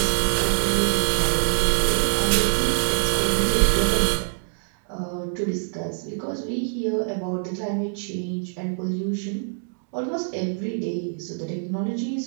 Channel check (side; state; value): left; silent; digital silence